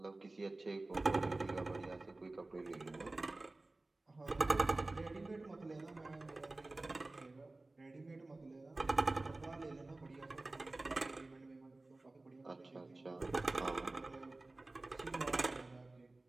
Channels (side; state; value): left; quieter; 3.0 dB